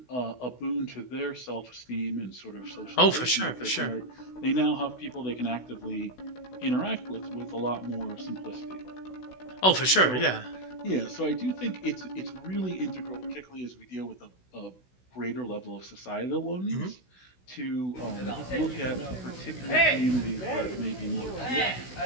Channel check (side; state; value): right; late; 16 ms